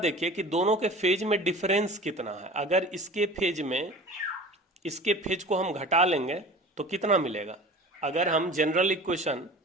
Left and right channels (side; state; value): both; normal; correlation 0.39